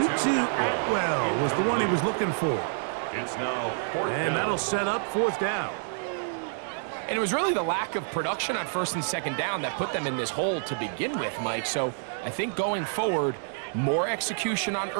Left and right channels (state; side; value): silent; left; 59 dB below the other